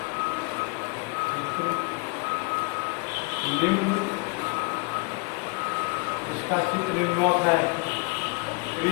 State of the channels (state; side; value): quieter; right; 31.2 dB